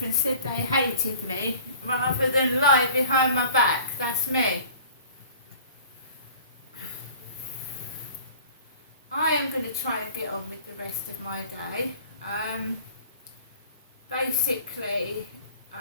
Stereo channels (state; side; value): inverted; both; correlation -0.46